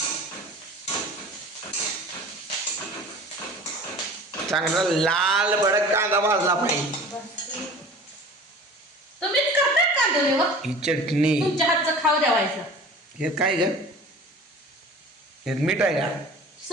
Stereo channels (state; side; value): normal; both; correlation 0.41